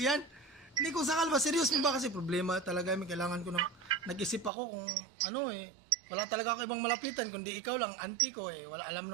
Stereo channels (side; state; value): left; drops out; at 4.5 s